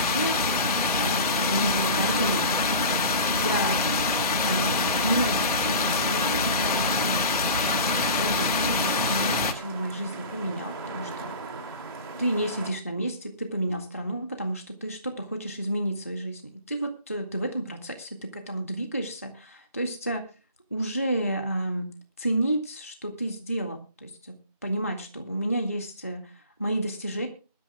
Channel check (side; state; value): both; inverted; correlation -0.39